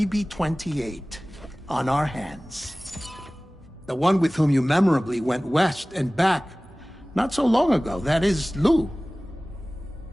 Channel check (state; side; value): normal; both; correlation 0.98